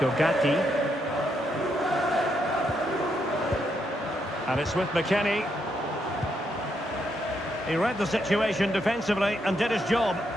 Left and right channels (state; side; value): normal; both; correlation 0.78